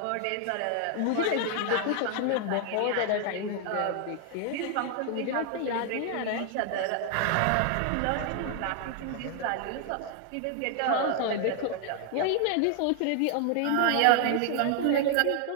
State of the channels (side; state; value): both; different; correlation 0.00